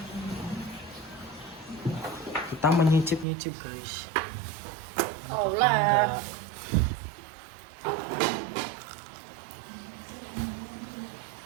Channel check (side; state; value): left; drops out; at 3.2 s